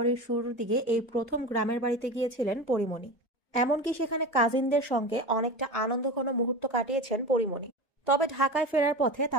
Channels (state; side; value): normal; both; correlation 0.28